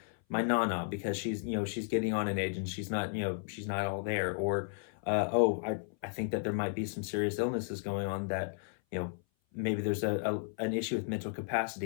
my nana because she's getting on in age and she's not all there. Or, I think that there might be some serious illnesses going on that, you know, maybe there's an issue with mental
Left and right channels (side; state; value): right; silent; 55 dB below the other